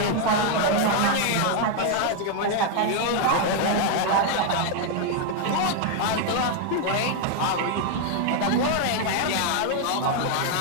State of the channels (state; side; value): different; both; correlation 0.00